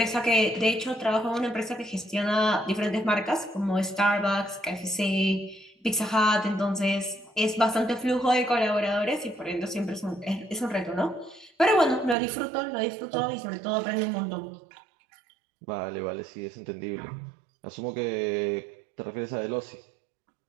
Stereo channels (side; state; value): left; drops out; at 12.2 s